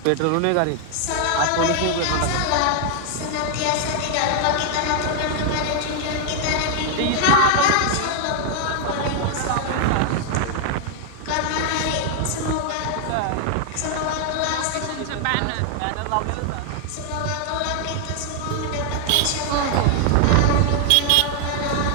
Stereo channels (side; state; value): both; different; correlation 0.00